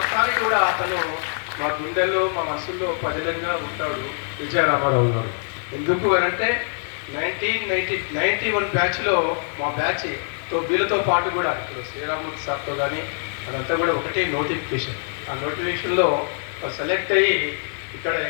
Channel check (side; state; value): right; silent; 63 dB below the other